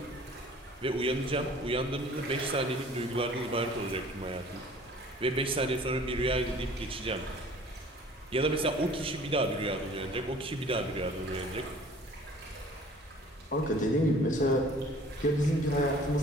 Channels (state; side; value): normal; both; correlation 0.50